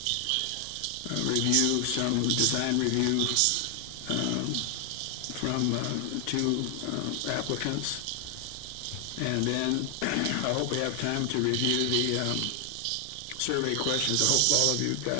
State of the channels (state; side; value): different; both; correlation 0.00